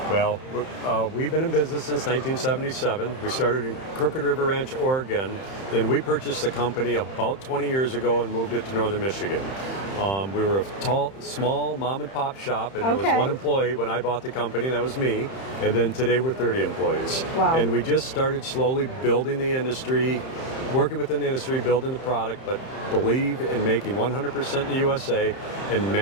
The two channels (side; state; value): right; late; 31 ms